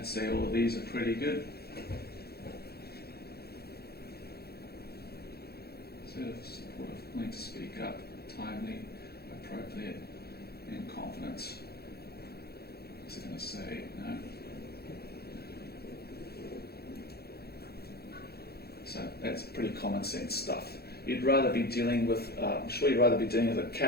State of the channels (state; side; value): late; right; 0.46 ms